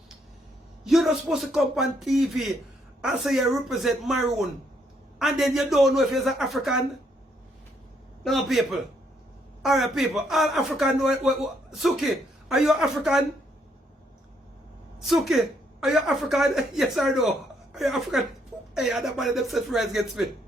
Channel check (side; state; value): both; normal; correlation 0.72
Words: you're not supposed to come on TV and say you represent maroon, and then you don't know if you're an African. No, people. Alright, people. All African. Suki, are you African? Suki, are you African? Yes or no? Are you African? Hey, I don't mind them set friends against me.